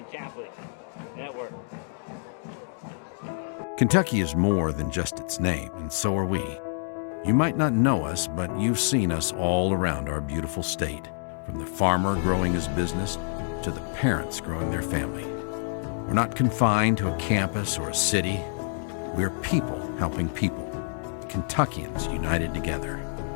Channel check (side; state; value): right; silent; digital silence